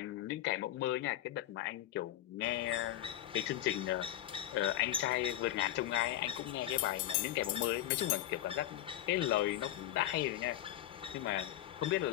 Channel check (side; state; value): right; quieter; 13.4 dB